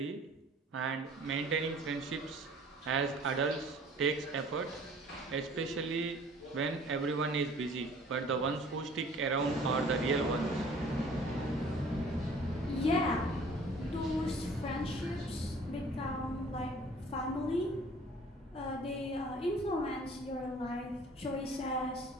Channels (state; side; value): normal; both; correlation 0.51